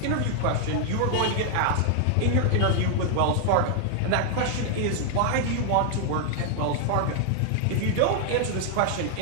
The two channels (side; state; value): both; different; correlation 0.00